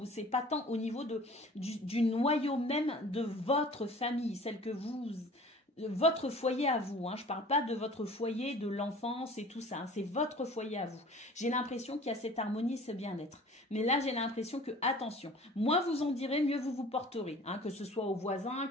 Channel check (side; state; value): both; normal; correlation 0.46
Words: c'est pas tant au niveau du noyau même de votre famille, celle que votre foyer à vous, hein. Je parle pas de votre foyer de l'enfance et tout ça, hein. C'est votre foyer à vous. J'ai l'impression qu'il y a cette harmonie, ce bien-être. Mais là, j'ai l'impression que, attention, moins vous en direz, mieux vous vous porterez, hein. Que ce soit aux voisins,